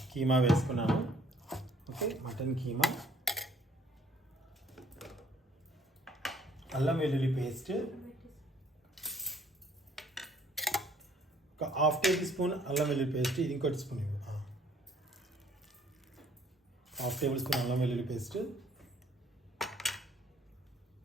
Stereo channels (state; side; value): normal; both; correlation 0.60